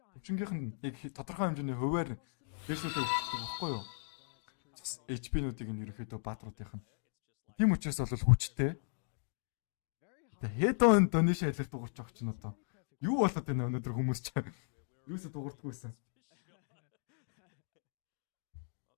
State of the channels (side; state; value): right; silent; digital silence